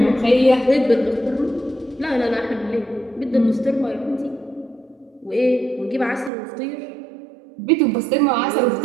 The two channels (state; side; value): drops out; left; at 6.3 s